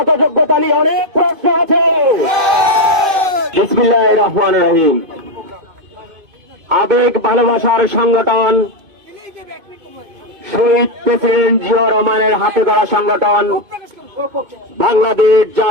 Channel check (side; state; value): left; late; 2.5 ms